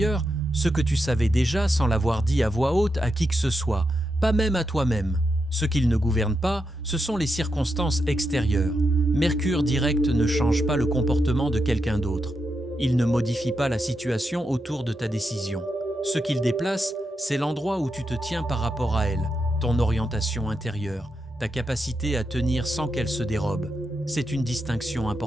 ce que tu savais déjà sans l'avoir dit à voix haute à qui que ce soit, pas même à toi-même. Ce qu'il ne gouverne pas, ce sont les circonstances extérieures. Mercure direct ne change pas le comportement de quelqu'un d'autre. Il ne modifie pas la situation autour de ta décision. Ce qu'il déplace, c'est l'endroit où tu te tiens par rapport à elle, ton orientation intérieure, ta capacité à tenir sans qu'elle se dérobe. C'est une distinction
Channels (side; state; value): both; normal; correlation 0.85